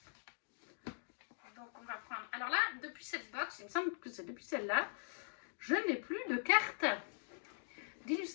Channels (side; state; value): right; silent; digital silence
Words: Donc on va prendre... Alors là, depuis cette box, il me semble que c'est depuis celle-là, je n'ai plus de carte